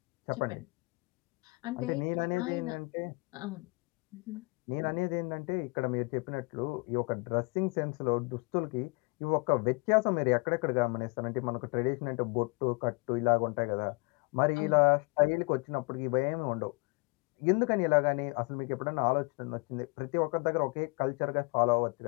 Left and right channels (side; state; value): right; quieter; 29.6 dB